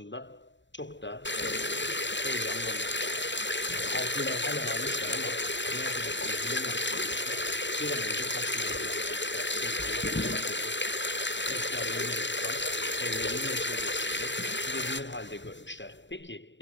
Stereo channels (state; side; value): late; right; 0.53 ms